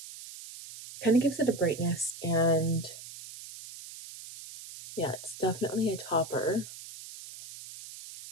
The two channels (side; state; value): right; noise; hiss, 14 dB below the sound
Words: Kind of gives it a brightness, and yeah, it's definitely a topper.